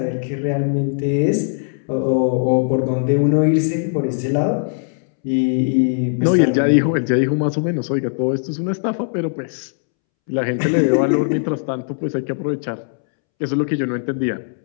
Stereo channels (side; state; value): right; silent; 66 dB below the other